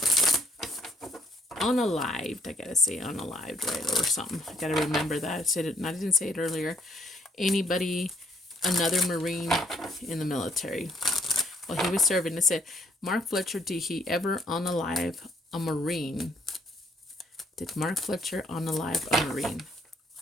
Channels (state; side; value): normal; both; correlation 0.67